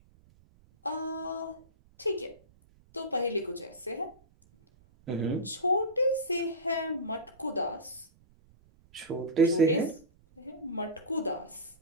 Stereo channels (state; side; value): noise; right; rumble, 28 dB below the sound